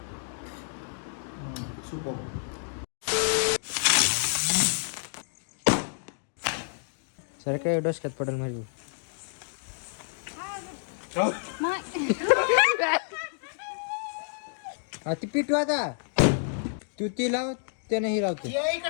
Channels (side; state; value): right; silent; digital silence